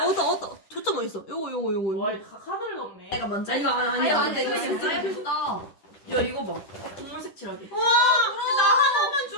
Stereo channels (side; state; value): right; late; 10 ms